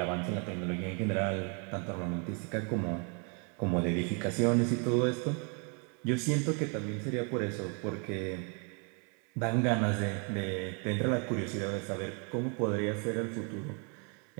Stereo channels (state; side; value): quieter; left; 37.1 dB